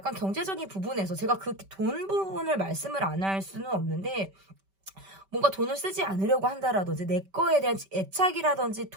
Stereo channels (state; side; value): late; left; 5.2 ms